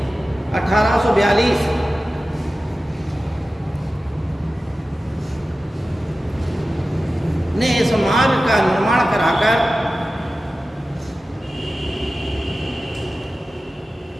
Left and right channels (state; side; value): normal; both; correlation 0.95